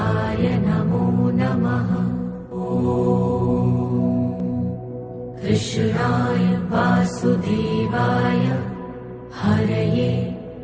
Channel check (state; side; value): identical; both; correlation 1.00